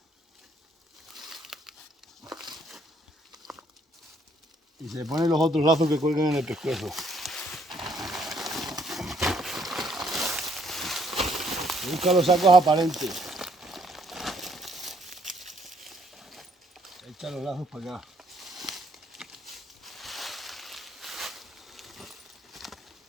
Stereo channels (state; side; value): normal; both; correlation 0.68